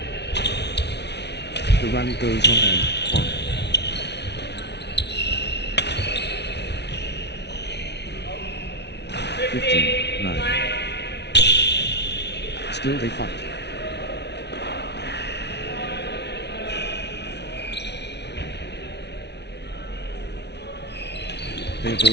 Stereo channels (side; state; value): right; late; 0.50 ms